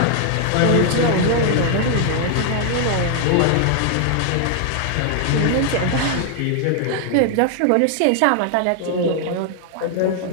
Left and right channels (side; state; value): both; different; correlation 0.00